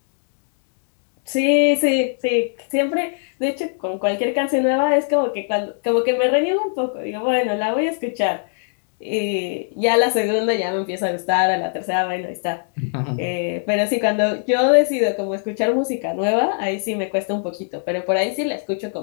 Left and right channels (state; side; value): silent; right; digital silence